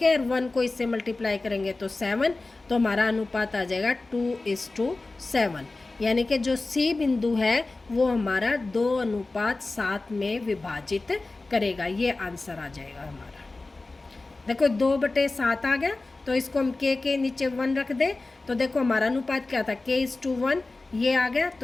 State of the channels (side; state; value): right; quieter; 3.3 dB